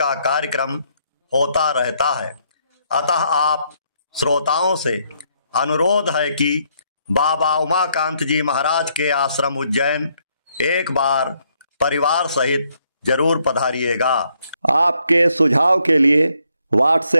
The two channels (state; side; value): inverted; both; correlation -0.72